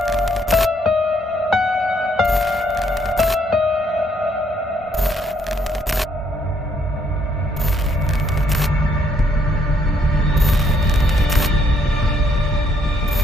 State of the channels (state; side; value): normal; both; correlation 0.70